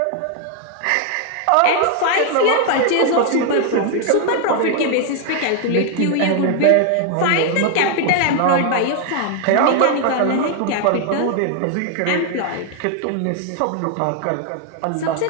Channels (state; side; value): different; both; correlation 0.00